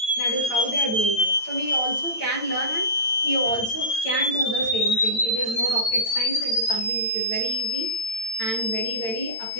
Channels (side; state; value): right; late; 8.9 ms